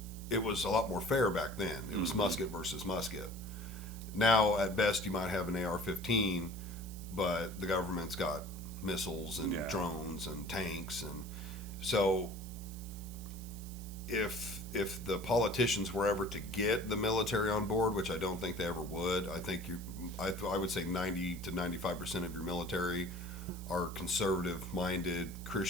was a lot more fair back then. It was musket versus musket. Now, at best, you might have an AR-15, but the government's got missiles and drones and tanks. And so if the politicians were ever to get the military on board, which I don't think they ever would, I would say 90 to 95% of your military are conservative-minded,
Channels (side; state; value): right; noise; hiss, 17 dB below the sound